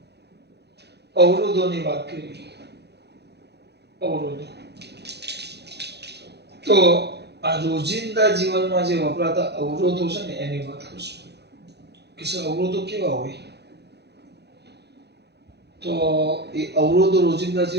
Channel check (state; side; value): late; left; 0.48 ms